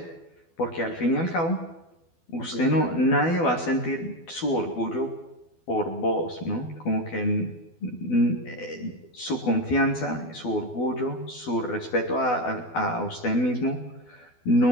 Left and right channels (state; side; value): late; right; 12 ms